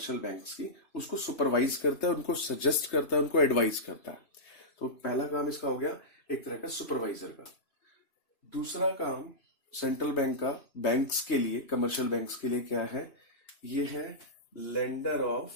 बैंक्स की, उसको सुपरवाइज करता है, उनको सजेस्ट करता है, उनको एडवाइज करता है। तो पहला काम इसका हो गया एक तरह का सुपरवाइजर का। दूसरा काम सेंट्रल बैंक का बैंक्स के लिए, कमर्शियल बैंक्स के लिए क्या है? ये है lender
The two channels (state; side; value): late; right; 3.2 ms